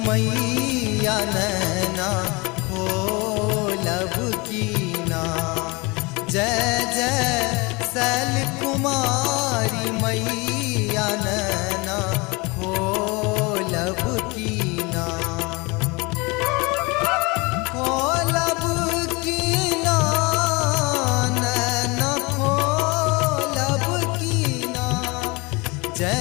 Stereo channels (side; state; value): right; quieter; 26.1 dB